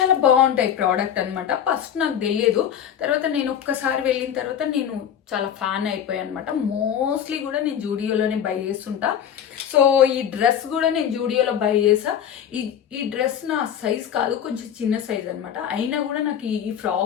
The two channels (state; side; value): quieter; right; 9.2 dB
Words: బాగుంటాయి ప్రోడక్ట్ అనమాట. ఫస్ట్ నాకు తెలియదు, తర్వాత నేను ఒక్కసారి వెళ్ళిన తర్వాత నేను చాలా ఫ్యాన్ అయిపోయాను అనమాట. మోస్ట్లీ కూడా నేను జూడియోలోనే బై చేస్తుంటా. సో ఈ డ్రెస్ కూడా నేను జూడియోలో బై చేసా. ఈ డ్రెస్ నా సైజ్ కాదు, కొంచెం చిన్న సైజ్ అనమాట. అయినా కూడా నాకు ఈ